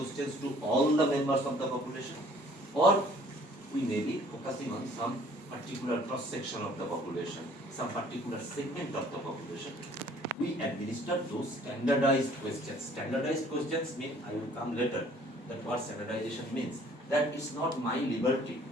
to all the members of the population, or we may be focusing on some particular cross-section of the population, some particular segment of the population. We administer those standardized questions. Standardized questions mean, I will come later, that what standardization means. That it's not my liberty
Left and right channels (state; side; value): normal; both; correlation 0.56